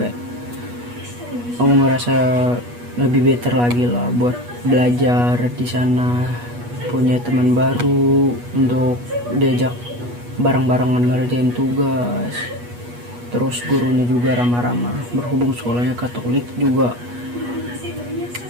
aku ngerasa lebih better lagi lah buat belajar di sana, punya teman baru untuk diajak bareng-barengan ngerjain tugas. Terus gurunya juga ramah-ramah, berhubung sekolahnya Katolik juga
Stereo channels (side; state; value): left; late; 8.3 ms